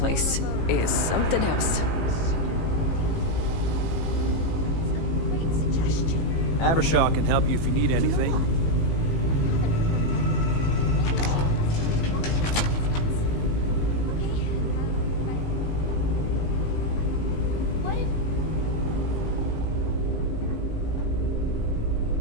is something else. Avershaw can help you if you need anything.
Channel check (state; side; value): late; right; 18 ms